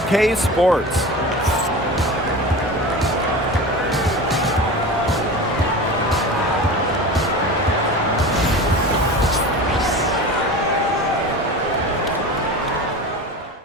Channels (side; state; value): both; normal; correlation 0.31